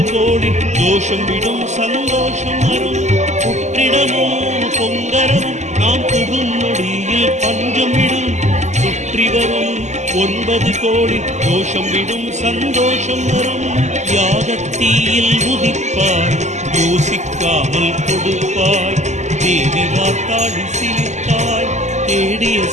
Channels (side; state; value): left; late; 0.34 ms